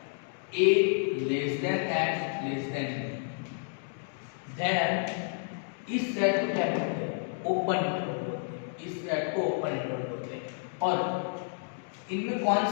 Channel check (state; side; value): silent; right; digital silence